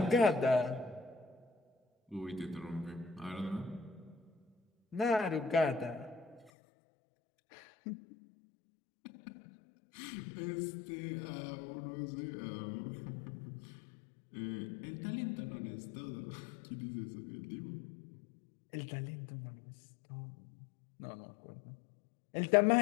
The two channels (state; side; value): drops out; right; at 6.5 s